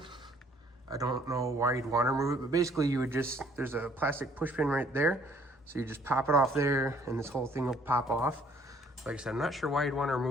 I don't know why you'd want to remove it, but basically you would just, there's a plastic push pin right there. So you just pop it off there and this whole thing will pop off. Like I said, I'm not sure why you'd want to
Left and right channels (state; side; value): normal; both; correlation 0.60